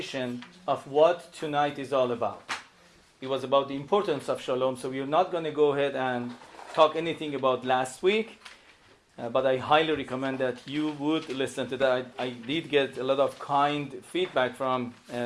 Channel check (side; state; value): both; identical; correlation 1.00